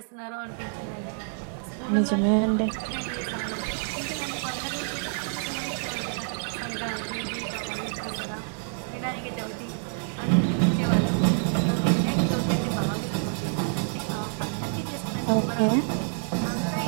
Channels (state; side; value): silent; left; 60 dB below the other